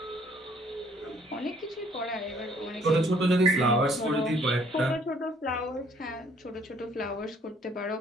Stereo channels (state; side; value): normal; both; correlation 0.61